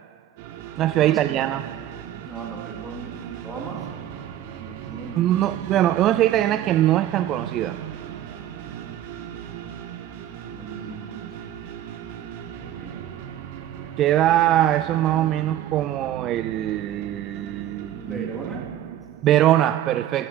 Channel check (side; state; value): left; quieter; 12.4 dB